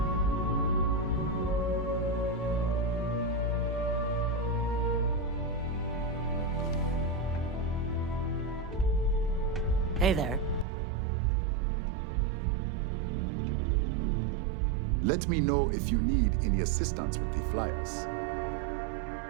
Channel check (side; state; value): left; drops out; at 10.7 s